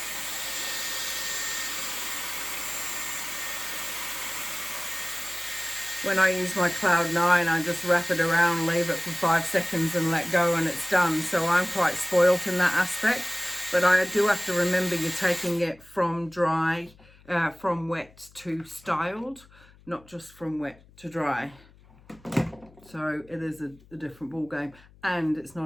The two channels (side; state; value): left; noise; hum, 26 dB below the sound